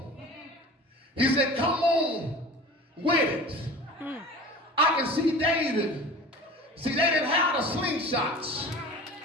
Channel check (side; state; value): both; normal; correlation 0.39